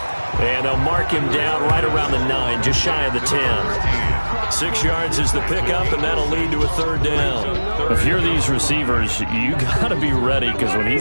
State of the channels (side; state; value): both; inverted; correlation -1.00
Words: And they'll mark him down right around the 9, just shy of the 10. 6 yards is the pickup, and that'll lead to a 3rd down. If you're these receivers, you got to be ready, because when